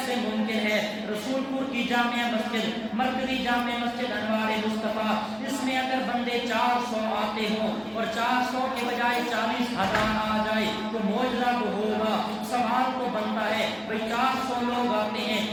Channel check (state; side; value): identical; both; correlation 1.00